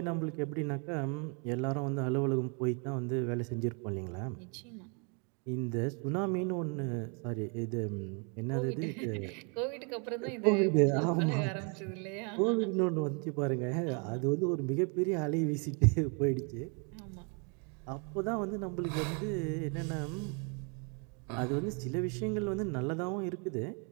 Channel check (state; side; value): quieter; left; 36.8 dB